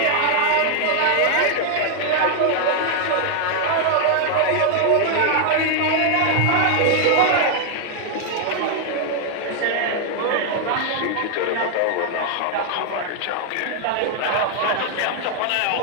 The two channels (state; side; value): different; both; correlation 0.00